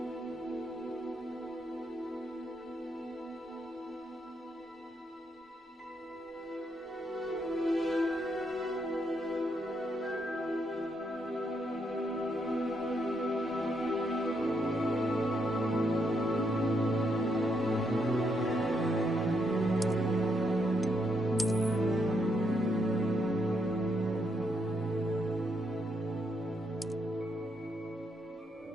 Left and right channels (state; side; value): normal; both; correlation 0.77